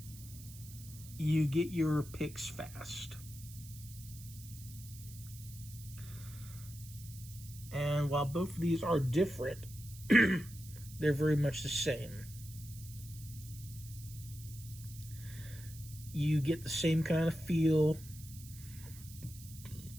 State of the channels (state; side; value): noise; right; hiss, 17 dB below the sound